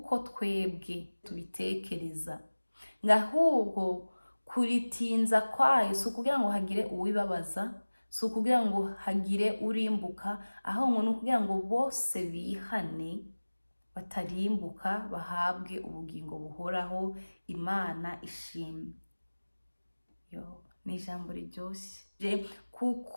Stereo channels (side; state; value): both; inverted; correlation -1.00